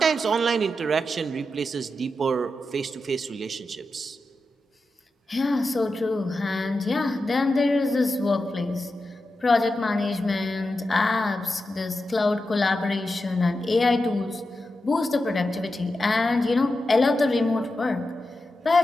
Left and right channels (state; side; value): normal; both; correlation 0.90